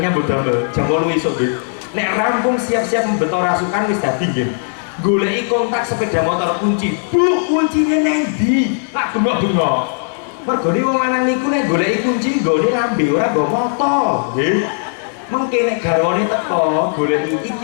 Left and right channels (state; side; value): silent; right; 65 dB below the other